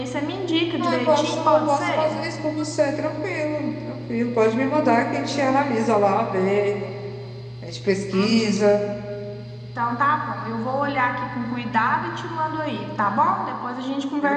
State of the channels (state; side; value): identical; both; correlation 1.00